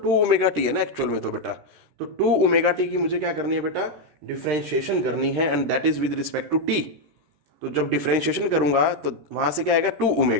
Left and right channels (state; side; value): late; left; 13 ms